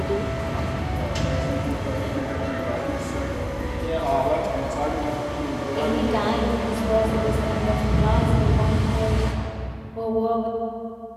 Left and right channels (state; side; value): identical; both; correlation 1.00